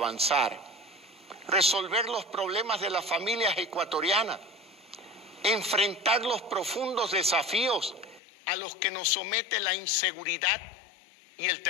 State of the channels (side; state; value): right; drops out; at 8.2 s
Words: resolver los problemas de las familias ecuatorianas, enfrentar los profundos desafíos a los que nos somete la inseguridad y el